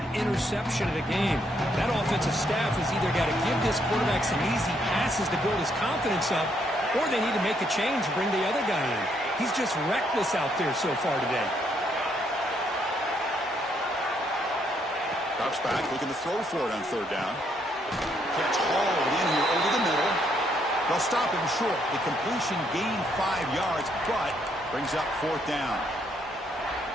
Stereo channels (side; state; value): both; normal; correlation 0.72